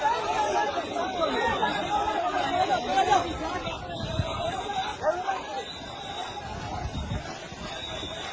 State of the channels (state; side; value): identical; both; correlation 1.00